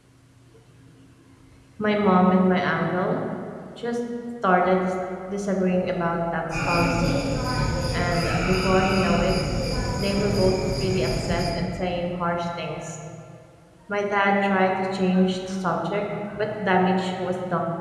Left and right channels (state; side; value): identical; both; correlation 1.00